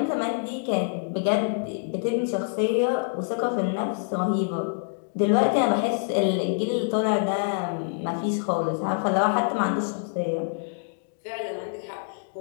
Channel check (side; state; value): right; silent; digital silence